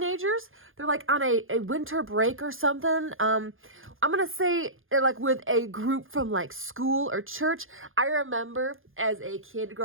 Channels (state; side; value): late; left; 0.59 ms